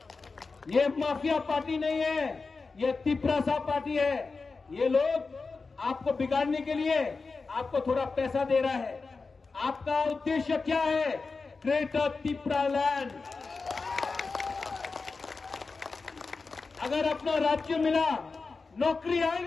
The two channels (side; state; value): right; quieter; 4.2 dB